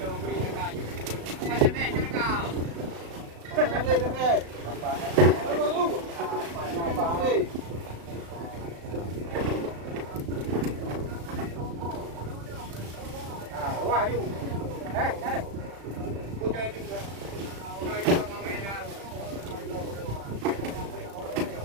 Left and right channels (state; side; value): late; left; 35 ms